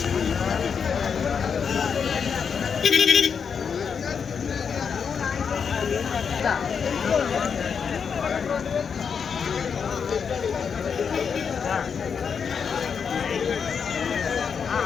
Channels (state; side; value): quieter; right; 6.5 dB